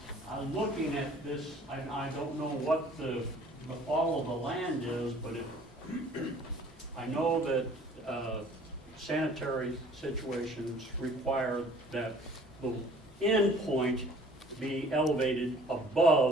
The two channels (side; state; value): both; normal; correlation 0.53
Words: I'm looking at this. I don't know what the fall of the land is, but I know that sanitary situations require that the end point be elevated